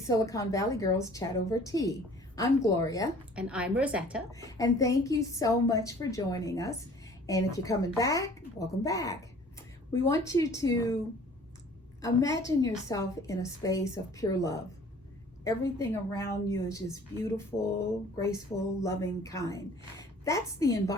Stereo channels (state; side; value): normal; both; correlation 0.51